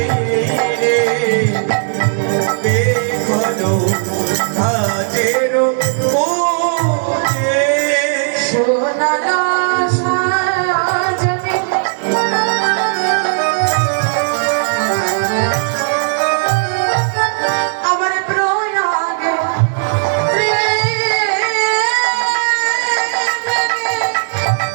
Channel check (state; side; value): silent; left; digital silence